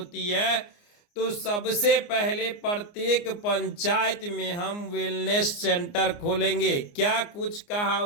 है तो सबसे पहले प्रत्येक पंचायत में हम वेलनेस सेंटर खोलेंगे। क्या कुछ कहा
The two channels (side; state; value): right; late; 29 ms